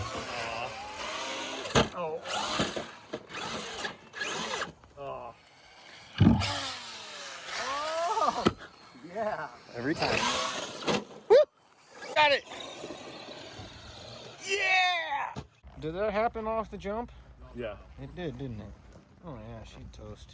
Oh. Oh. Oh! Yeah. Every time. Woo! Got it! Yeah! Did that happen off the jump? Yeah. It did, didn't it? Oh yeah, she'd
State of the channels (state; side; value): identical; both; correlation 1.00